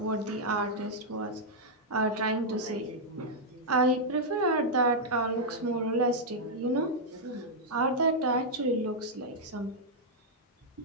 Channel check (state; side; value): normal; both; correlation -0.05